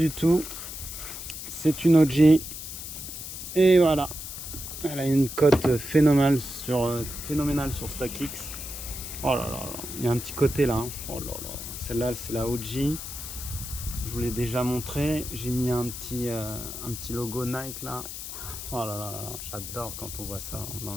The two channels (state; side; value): noise; left; hiss, 8 dB below the sound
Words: tout. C'est une OG. Et voilà. Elle a une cote phénoménale sur StockX. Oh là là là. Il y a un petit côté là. Hein. Oh là là. Celle-là, c'est la OG. Je vous l'ai déjà montré. J'ai mis un petit logo Nike là. Oh là là là là. J'adore quand on voit ça dans